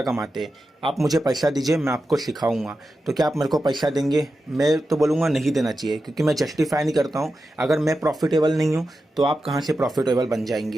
कमाते। आप मुझे पैसा दीजिए, मैं आपको सिखाऊंगा। तो क्या आप मेरे को पैसा देंगे? मैं तो बोलूँगा नहीं देना चाहिए, क्योंकि मैं जस्टिफाई नहीं करता हूँ। अगर मैं प्रॉफिटेबल नहीं हूँ तो आप कहाँ से प्रॉफिटेबल बन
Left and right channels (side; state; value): both; normal; correlation 0.91